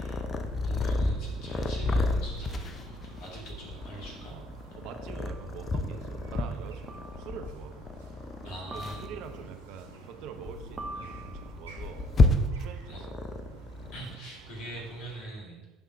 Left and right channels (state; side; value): normal; both; correlation 0.69